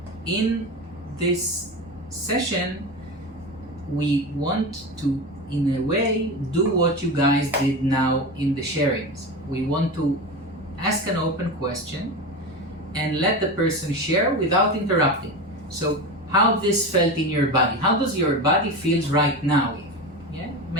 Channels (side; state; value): both; normal; correlation 0.23